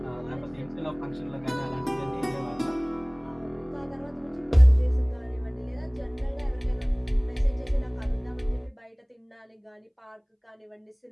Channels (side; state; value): both; identical; correlation 1.00